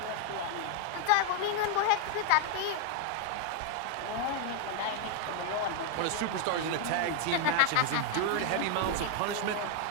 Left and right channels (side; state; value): both; different; correlation 0.00